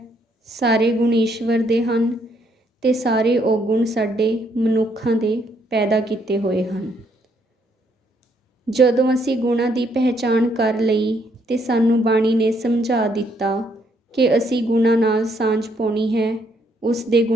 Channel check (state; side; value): normal; both; correlation 0.71